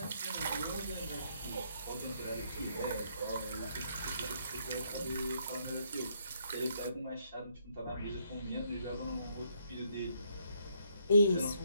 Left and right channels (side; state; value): both; inverted; correlation -0.72